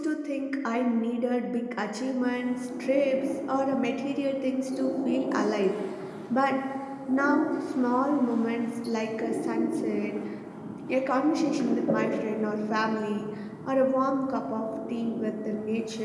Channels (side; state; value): both; identical; correlation 1.00